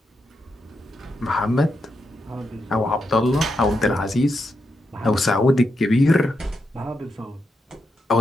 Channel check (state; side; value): normal; both; correlation 0.84